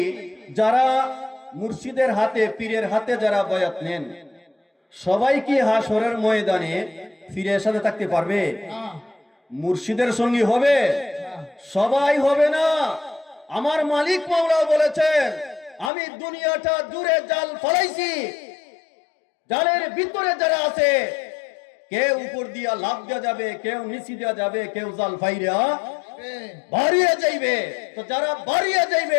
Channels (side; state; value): right; drops out; at 15.9 s